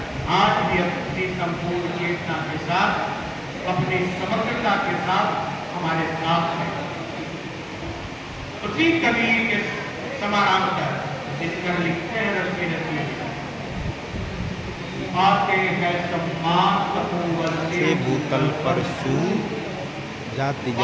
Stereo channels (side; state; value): both; identical; correlation 1.00